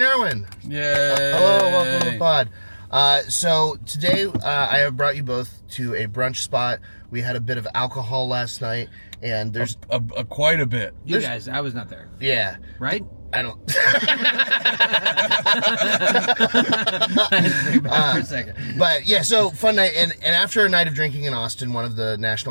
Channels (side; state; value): both; inverted; correlation -1.00